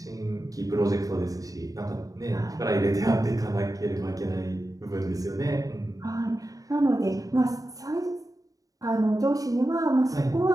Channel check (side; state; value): left; late; 0.17 ms